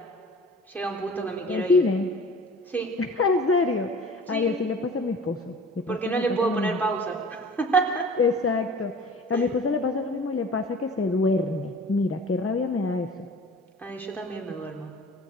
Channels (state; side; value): normal; both; correlation 0.44